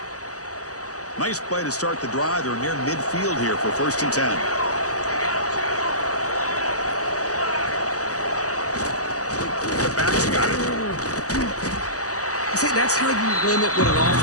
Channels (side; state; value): right; late; 0.66 ms